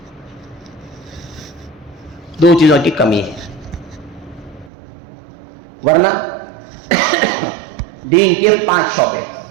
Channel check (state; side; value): drops out; left; at 4.7 s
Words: دو چیزوں کی کمی ہے. ورنہ دین کے 5 شعبے،